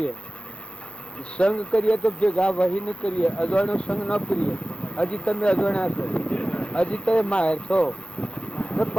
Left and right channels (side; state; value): right; late; 0.058 ms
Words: સંગ કરીએ તો ભેગા વહી ન કરીએ, અજવાણો સંગ ન કરીએ. હજી તમે અજવાણ્યા છો, હજી તમે માહેર છો તો